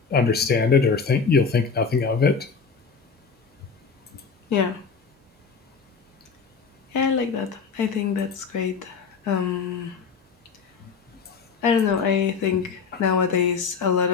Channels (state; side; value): quieter; right; 5.5 dB